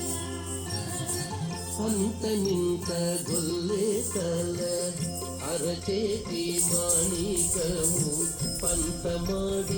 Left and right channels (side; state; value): both; identical; correlation 1.00